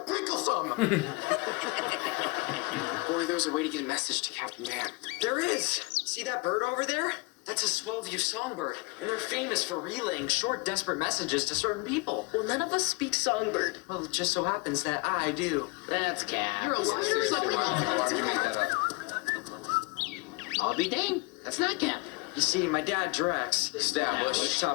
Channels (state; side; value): quieter; right; 27.3 dB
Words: pickles on them. Boy, there's a way to get a message to Captain Man. There is. See that bird over there? That's a Swellview songbird, and they're famous for relaying short, desperate messages to certain people. Well, none of us speak songbird. Well, it just so happens that I do. That's Cap. You're a liar. Why would you make that up? I'll be dang. That's not Cap. You see, my dad, Drex, Established.